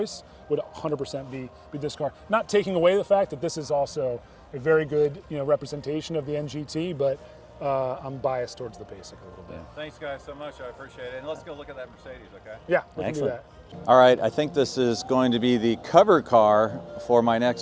would 100% be this car. Not taking away the fact that this is also a very good representation of the NGT, but I'm biased towards the basic a little bit. Thanks, guys, so much. I appreciate it. And let's go look at that Mercedes, okay? Yeah, we can do that. All right, I think this is going to be the cover car for my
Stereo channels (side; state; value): both; identical; correlation 1.00